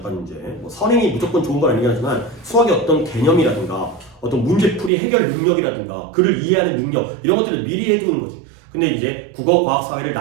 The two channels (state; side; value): drops out; left; at 4.9 s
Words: 이제 뭐 선행이 무조건 좋은 건 아니긴 하지만 수학의 어떤 개념이라든가 어떤 문제풀이 해결 능력이라든가 글을 이해하는 능력 이런 것들을 미리 해두는 거지. 근데 이제 국어, 과학, 사회를